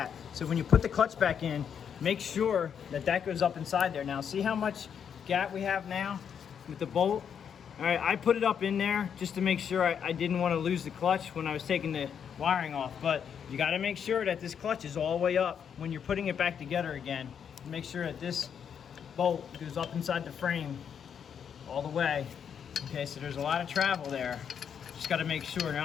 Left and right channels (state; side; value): quieter; right; 7.8 dB